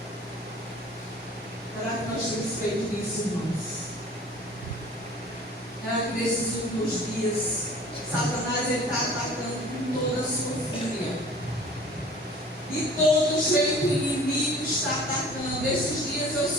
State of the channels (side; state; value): both; normal; correlation 0.47